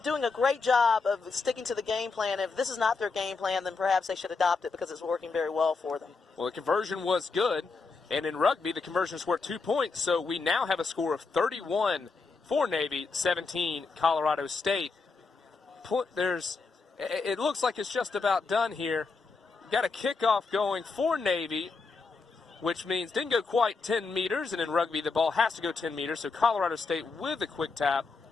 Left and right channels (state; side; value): quieter; right; 4.4 dB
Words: a great job of sticking to the game plan. If this is not their game plan, then perhaps they should adopt it because it's working very well for them. Well, the conversion was good, and in rugby the conversion's worth 2 points, so we now have a score of 31 for Navy, 17 Colorado State. It looks like it's just about done here. Got a kickoff going for Navy, which means didn't go quite 10 meters, and in rugby the ball has to go 10 meters, so Colorado State with a quick tap.